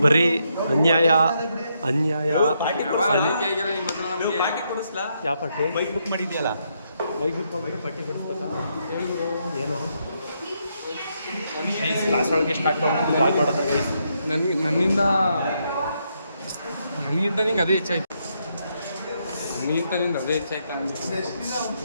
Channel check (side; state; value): both; inverted; correlation -0.78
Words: ಬರೀ ಅನ್ಯಾಯ. ಯಾವ ಪಾರ್ಟಿ? ಬೈಕ್ ಬುಕ್ ಮಾಡಿದ್ಯಲ್ಲ, ಬೈಕ್ ಬುಕ್ ಹೋಗ್ಬಿಟ್ಟು ಪಾರ್ಟಿ ಕೊಡಿಸ್ಬೇಕಾ? ಏನು ಕ್ಲಾಸ್ ಒಳಗೆ ಸ್ಟಾರ್ಟ್ ಮಾಡೋದು ಗೈಸ್. ನನ್ನಿಂದ ನಿಂಗೆ ಅದೇ ಹೆಚ್ಚಾಯ್ತು. ನಿಂದ ಅದೇ ಹೆಚ್ಚಾಯ್ತು.